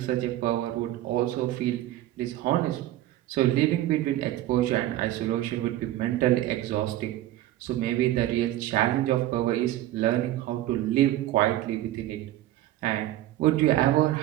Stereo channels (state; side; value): quieter; left; 14.5 dB